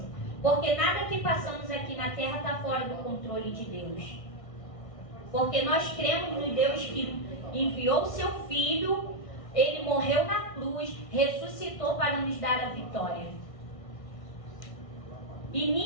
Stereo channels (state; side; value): late; right; 1.6 ms